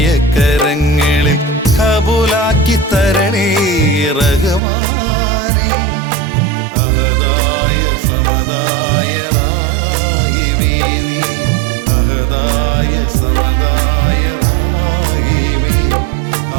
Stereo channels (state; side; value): drops out; left; at 4.6 s